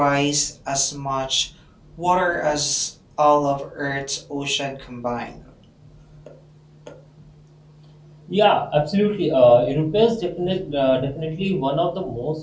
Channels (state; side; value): identical; both; correlation 1.00